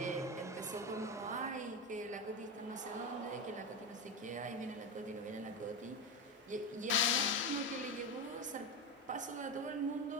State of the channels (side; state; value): both; normal; correlation 0.16